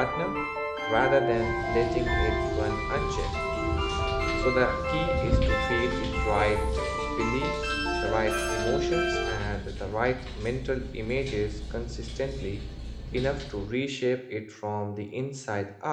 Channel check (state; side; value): identical; both; correlation 1.00